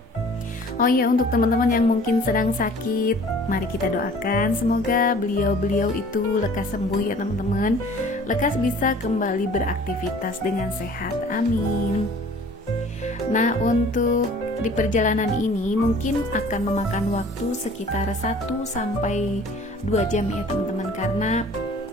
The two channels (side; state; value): both; normal; correlation 0.49